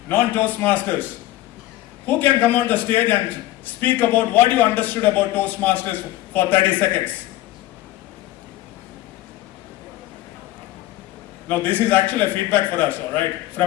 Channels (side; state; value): right; quieter; 15.9 dB